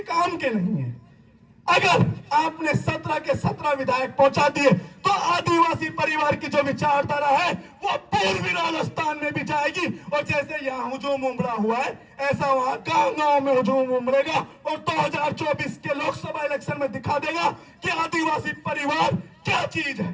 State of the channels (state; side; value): identical; both; correlation 1.00